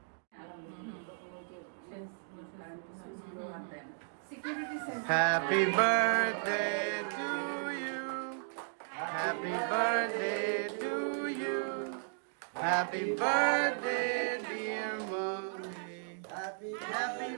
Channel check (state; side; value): silent; left; digital silence